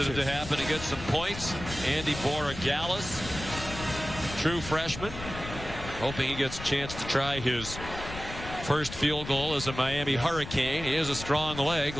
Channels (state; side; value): noise; left; rumble, 10 dB below the sound